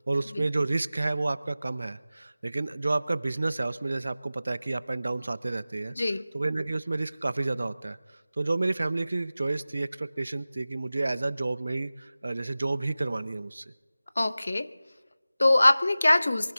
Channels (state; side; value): inverted; both; correlation -0.97